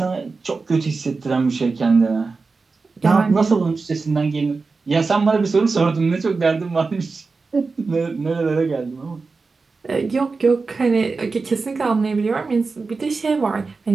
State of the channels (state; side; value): quieter; left; 4.2 dB